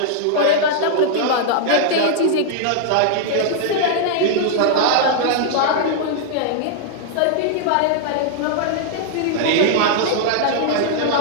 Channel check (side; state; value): both; different; correlation -0.01